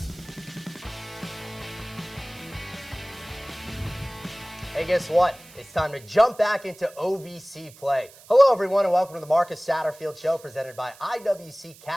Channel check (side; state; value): right; noise; hiss, 22 dB below the sound